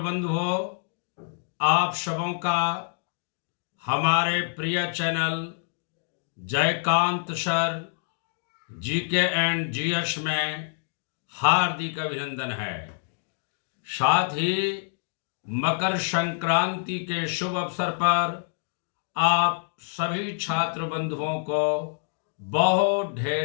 आप सबों का हमारे प्रिय channel Jaikant sir GK and GS में हार्दिक अभिनंदन है। साथ ही मकर संक्रांति के शुभ अवसर पर आप सभी छात्र बंधुओं को बहुत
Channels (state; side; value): silent; right; digital silence